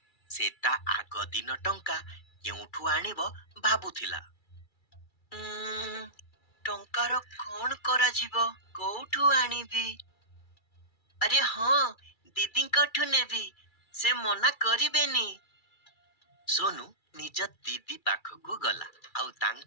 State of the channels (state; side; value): late; right; 2.3 ms